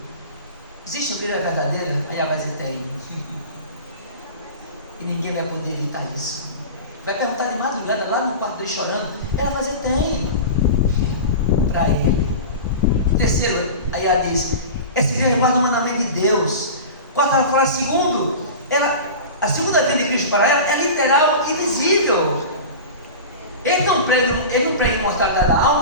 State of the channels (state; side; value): inverted; both; correlation -0.31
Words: existe uma Bíblia verdadeira? Aí ela vai dizer: tem. E ninguém vai poder evitar isso. Vai perguntar de madrugada lá no quarto dele chorando, ela vai dizer: tem. Para ele. Terceiro, aí ela diz: essa igreja guarda o mandamento de Deus. Quarto, ela fala: segundo, a segunda vinda de Cristo para ela é literal e visível. Eles não pregam imortalidade da